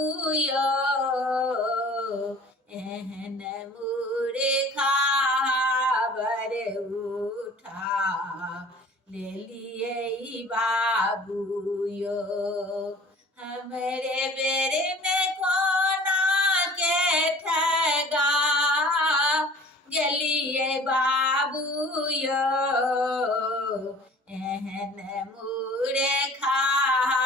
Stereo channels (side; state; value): both; normal; correlation 0.47